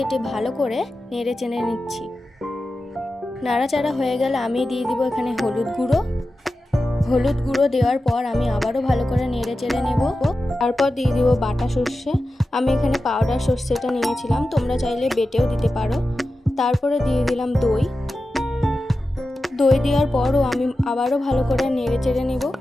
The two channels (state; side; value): normal; both; correlation 0.93